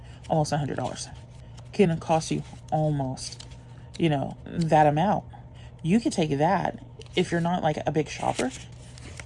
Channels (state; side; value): identical; both; correlation 1.00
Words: almost $100. Can cost you almost, you know, that amount. You could take that if you're not like a big shopper.